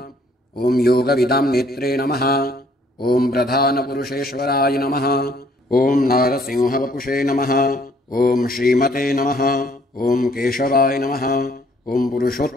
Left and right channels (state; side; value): normal; both; correlation 0.63